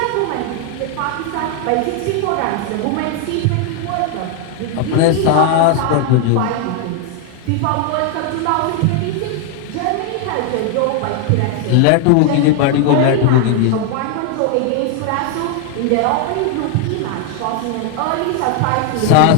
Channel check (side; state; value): both; different; correlation 0.00